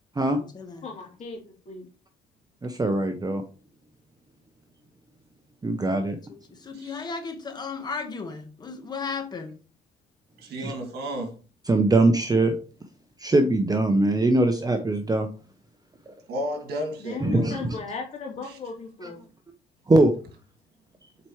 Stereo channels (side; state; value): both; normal; correlation 0.76